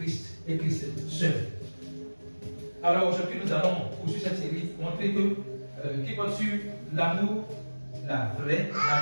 et Christ seul. Alors aujourd'hui, nous allons poursuivre cette série, montrer que qui porte sur l'amour, la vraie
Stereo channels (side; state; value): both; inverted; correlation -1.00